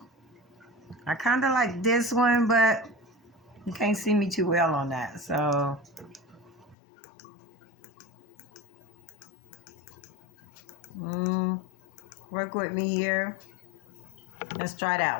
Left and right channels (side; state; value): right; drops out; at 6.8 s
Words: I kind of like this one, but you can't see me too well on that. So, work with me here. Let's try